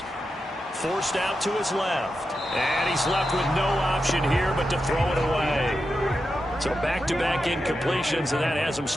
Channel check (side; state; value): both; normal; correlation 0.88